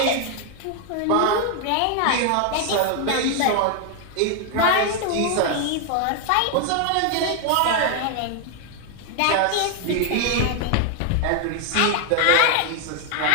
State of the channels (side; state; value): both; different; correlation 0.00